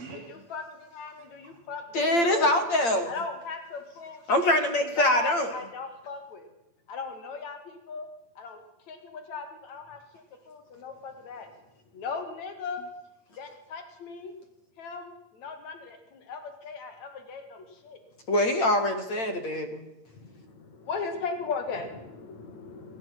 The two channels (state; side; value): late; right; 8.8 ms